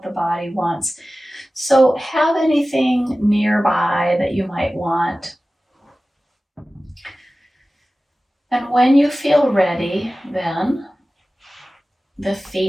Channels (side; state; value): both; normal; correlation 0.96